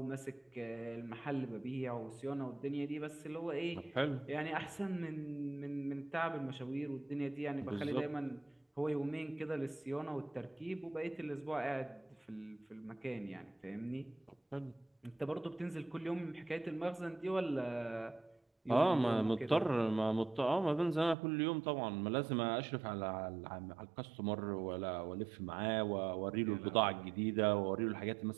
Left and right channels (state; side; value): drops out; left; at 21.2 s